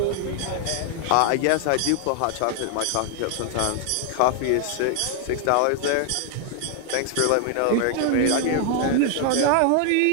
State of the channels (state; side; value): different; both; correlation 0.00